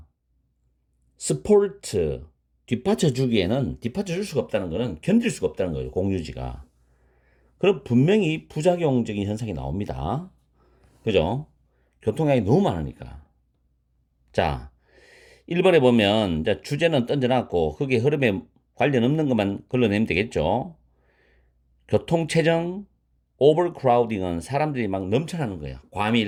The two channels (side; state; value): both; identical; correlation 1.00